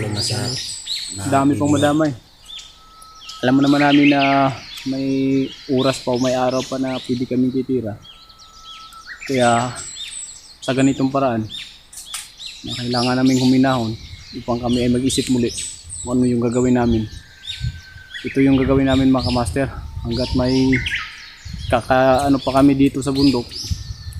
na sa Dami pang madamay. Alam mo naman namin na may oras pa o may araw pa na pwede kami titira. Kaya sa ganitong paraan, na kailangan namin huminahon upang kami ay mag-isip muli kung ano yung gagawin namin. Ito yung gagawin namin mga kamaster. Hanggat may ano pa kami dito sa bundok,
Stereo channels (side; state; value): both; identical; correlation 1.00